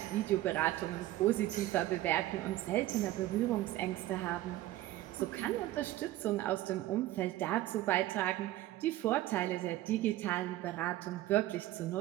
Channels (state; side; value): quieter; left; 15.4 dB